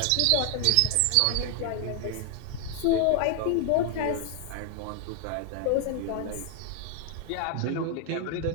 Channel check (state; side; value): different; both; correlation 0.00